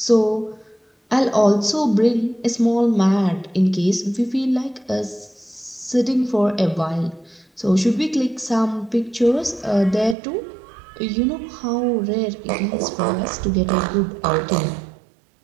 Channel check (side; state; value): left; drops out; at 10.2 s